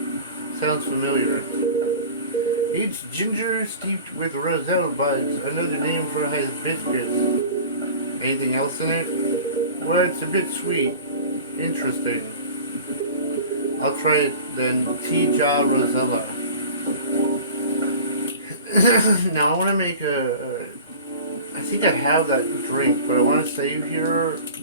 Sounds familiar. It's ginger steeped with roselle buds, another name for hibiscus. Anything else in it? Well, it's a bit sweet. Interesting. I'll try it then. Tea-ja Rosella. Now I want to make I think I have that drink, but I want to save here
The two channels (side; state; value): both; inverted; correlation -0.39